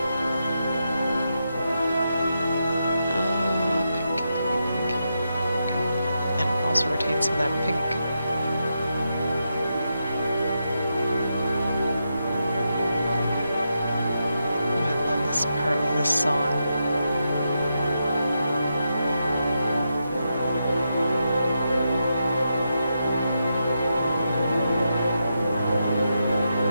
Also retain some of that pink. this part of this song.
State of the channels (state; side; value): inverted; both; correlation -0.85